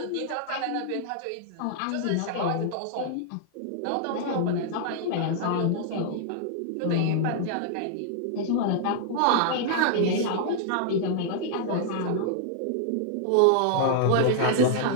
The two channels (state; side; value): different; both; correlation -0.01